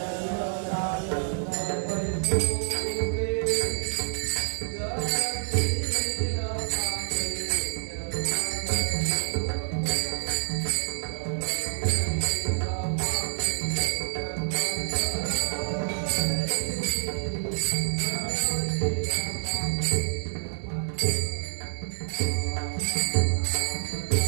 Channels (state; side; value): silent; left; digital silence